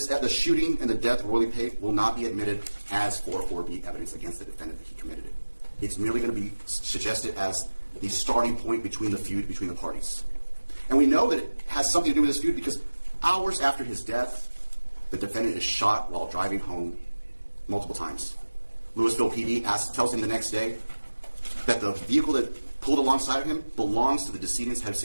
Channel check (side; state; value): both; inverted; correlation -1.00